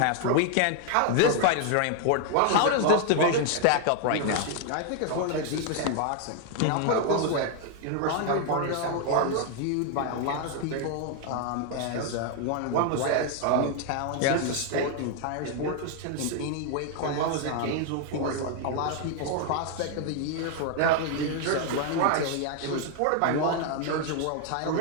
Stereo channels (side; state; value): both; different; correlation 0.00